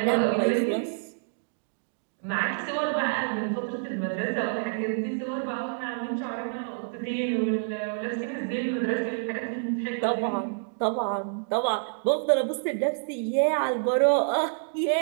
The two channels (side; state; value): left; silent; digital silence